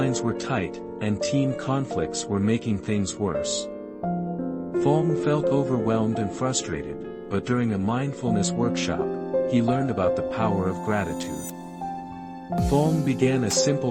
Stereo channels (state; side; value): identical; both; correlation 1.00